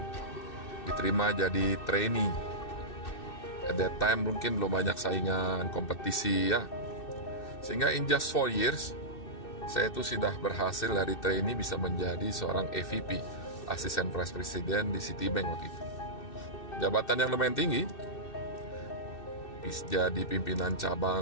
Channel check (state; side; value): late; right; 2.6 ms